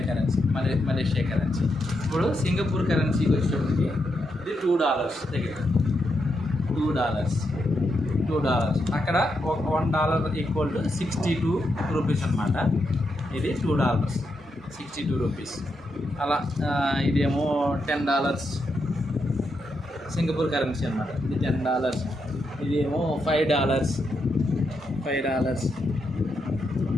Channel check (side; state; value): both; normal; correlation 0.83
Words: కరెన్సీ. ఇప్పుడు సింగపూర్ కరెన్సీకి వచ్చేటప్పటికి ఇది $2 దగ్గర $2. అక్కడ $1 ఈక్వల్ టు 62 రూపీస్ అనమాట. ఇది $2, 62 రూపీస్. అలా ఇదేమో $10 సింగపూర్ కరెన్సీ అనమాట. ఇది $10. ఇదేమో $5.